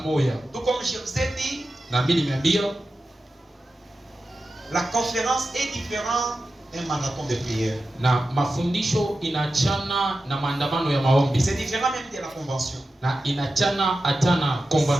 moja. Tout comme je vous ai dit, na mimi nimeambia la conférence est différente d'un marathon de prière. Na mafundisho inachana na maandamano ya maombi. C'est différent même de la convention. Na inachana atana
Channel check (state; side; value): normal; both; correlation 0.92